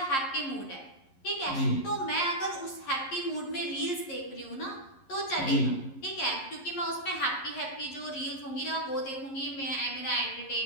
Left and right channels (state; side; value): late; right; 11 ms